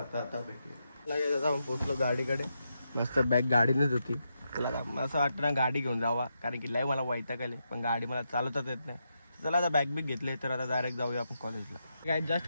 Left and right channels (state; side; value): inverted; both; correlation -0.84